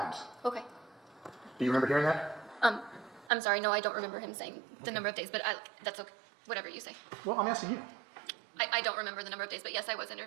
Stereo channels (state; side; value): drops out; left; at 3.3 s